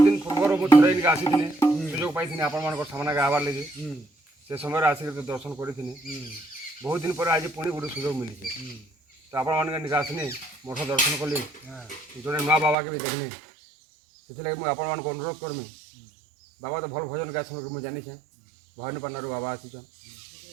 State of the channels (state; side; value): drops out; left; at 12.8 s